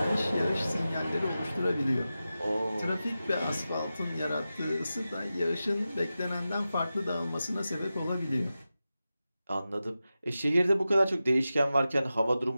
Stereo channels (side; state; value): both; inverted; correlation -0.93